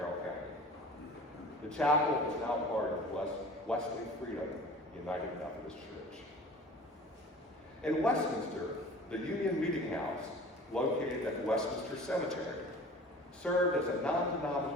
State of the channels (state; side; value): normal; both; correlation 0.43